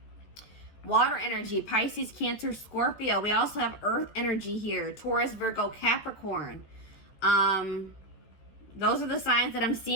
Water energy, Pisces, Cancer, Scorpio. We also have earth energy here. Taurus, Virgo, Capricorn. Those are the signs that I'm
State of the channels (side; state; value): right; late; 14 ms